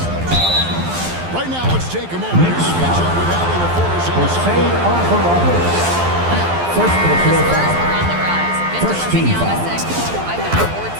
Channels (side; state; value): left; late; 12 ms